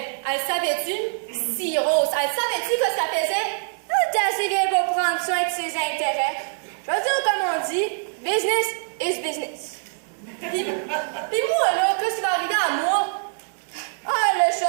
elle savait-tu? Si Rose, elle savait-tu que ça faisait? Ah, t'es assez vieille pour prendre soin de ses intérêts. Je veux dire, comme on dit, business is business. Puis moi, là, qu'est-ce qui va arriver à moi? Ah, le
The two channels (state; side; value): silent; left; digital silence